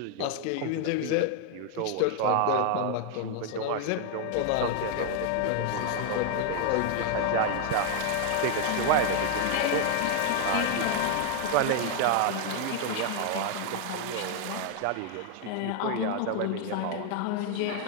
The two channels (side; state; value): both; different; correlation 0.00